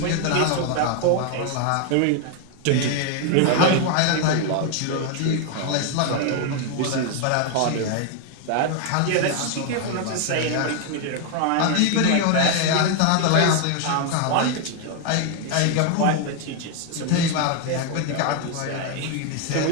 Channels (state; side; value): different; both; correlation 0.01